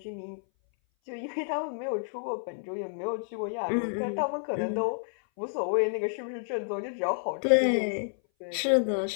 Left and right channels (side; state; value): right; silent; 57 dB below the other